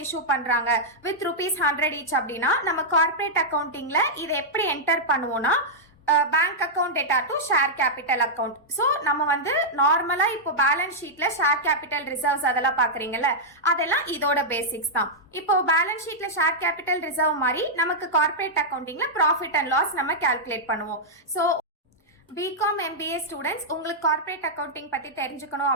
இஷ்யூ பண்றாங்க வித் ₹100 ஈச் அப்படின்னா, நம்ம கார்ப்பரேட் அக்கவுண்டிங்ல இதை எப்படி என்டர் பண்ணுவோம்னா, bank account data to share capital account. So நம்ம வந்து நார்மலா இப்போ பேலன்ஸ் ஷீட்ல ஷேர் கேபிட்டல் ரிசர்வ்ஸ் அதெல்லாம் பாக்குறீங்கல்ல, அதெல்லாம் இதோட பேசிக்ஸ் தான். இப்போ பேலன்ஸ் ஷீட்ல ஷேர் கேபிட்டல் ரிசர்வ் மாதிரி நமக்கு கார்ப்பரேட் அக்கவுண்டிங்ல ப்ராஃபிட் அண்ட் லாஸ் நம்ம கால்குலேட் பண்ணுவோம். ஸோ பிகாம் MBA ஸ்டூடெண்ட்ஸ், உங்களுக்கு கார்ப்பரேட் அக்கவுண்டிங் பத்தி தெரிஞ்சுக்கணும்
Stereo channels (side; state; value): both; normal; correlation -0.07